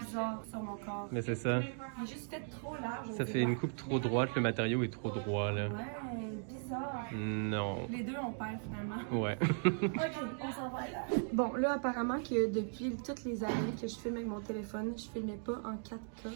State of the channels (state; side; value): silent; left; 53 dB below the other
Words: sur mon corps. Mais c'est ça. Il est juste fait trop large. Ça fait une coupe trop droite, le matériau est trop droit, là. Ouais, bizarre. Non. Les deux, on perd finalement. Ouais. Ok, on s'en va là. Bon, là, apparemment que depuis toutes les années que je filme avec mon téléphone, je filmais pas en 4K.